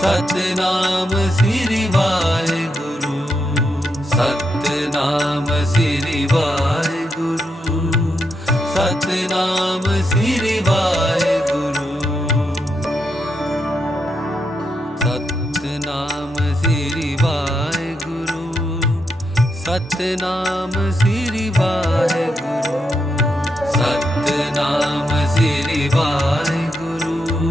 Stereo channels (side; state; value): both; normal; correlation 0.82